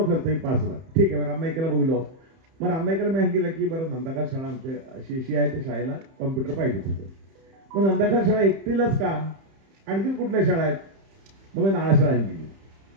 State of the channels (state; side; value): late; left; 31 ms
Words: खर्च 5 लाख. ठीक आहे, मग रामनाईकाला बघिलो. मग रामनाईकाला मी सांगितलं की बरं नंदाखाल शाळा आमच्या अशी आहे, त्या शाळेला कॉम्प्युटर पाहिजे होतं. मग नंदाखाल शाळा एकटीलाच का, आणखी कुठल्या शाळा आहेत? मग मी नाळा शाळा सांगितली,